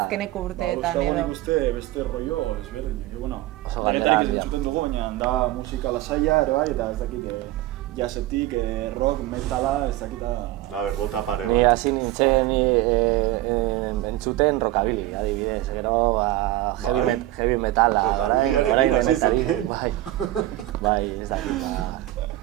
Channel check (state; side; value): quieter; left; 16.0 dB